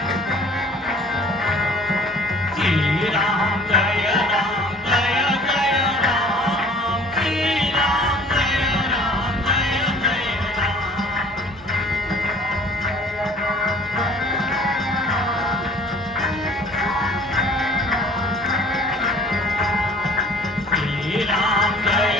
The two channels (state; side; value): normal; both; correlation 0.50